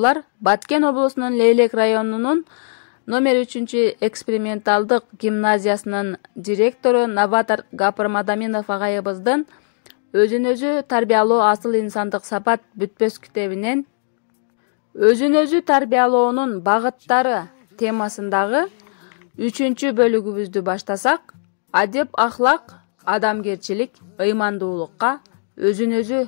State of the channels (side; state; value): right; silent; digital silence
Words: Баткен облусунун Лейлек районунун номер 3 эксперименталдык гимназиясынын директору Новатор Гапыр Мадаминов агайыбыздын өзүн-өзү тарбиялоо асыл инсандык сапат бүтпөс китебинен өзүн-өзү тарбиялоонун багыттары темасындагы 3 бөлүгүбүздү баштасак, адеп ахлак, адамгерчилик, ыймандуулукка өзүн-өзү